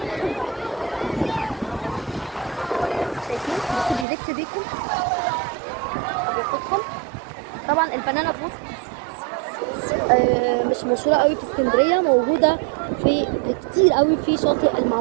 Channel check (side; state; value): left; drops out; at 4.0 s